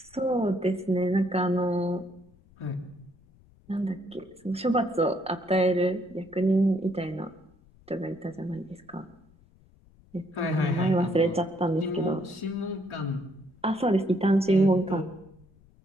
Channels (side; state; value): left; noise; rumble, 28 dB below the sound